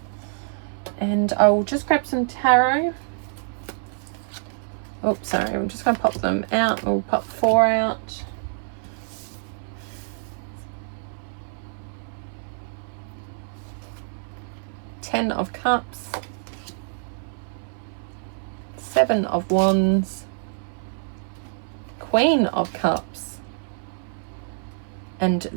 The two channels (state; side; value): silent; left; 61 dB below the other